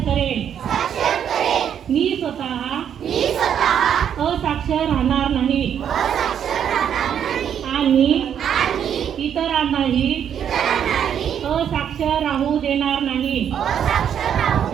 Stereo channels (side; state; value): left; quieter; 8.8 dB